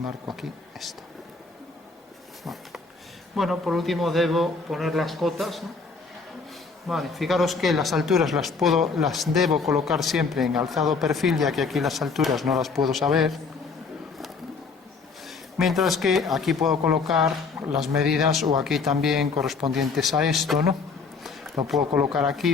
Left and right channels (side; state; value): right; quieter; 4.6 dB